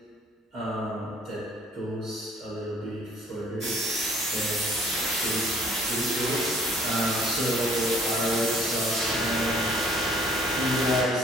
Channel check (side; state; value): both; normal; correlation 0.57